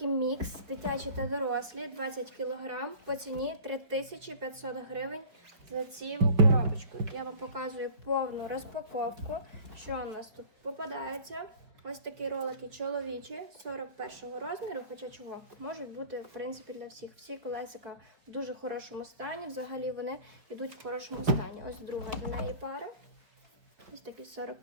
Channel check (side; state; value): left; late; 4.9 ms